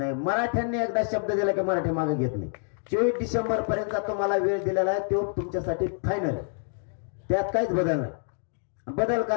मराठ्यांनी एकदा शब्द दिला की मराठी मागे घेत नाही. 24 डिसेंबर पर्यंत तुम्हाला वेळ दिलेला आहे, तो तुमच्यासाठी फायनल आहे. त्यात काहीच बदल नाही, बदल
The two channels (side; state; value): right; silent; 59 dB below the other